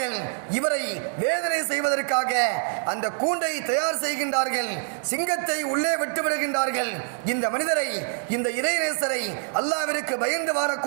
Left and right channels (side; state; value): left; silent; digital silence